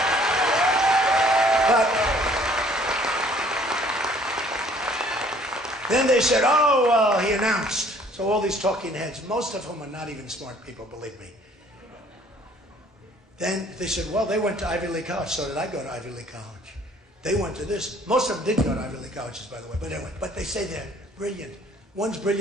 But then they said, he announced. So all these talking heads, most of whom are not even smart people, believe me. Then they said, well, they went to Ivy League College. So did I go to Ivy League College. They went to this. Most of them did go to Ivy League colleges, by the way. But anyway, but they say they're brilliant. One's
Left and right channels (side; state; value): both; normal; correlation 0.58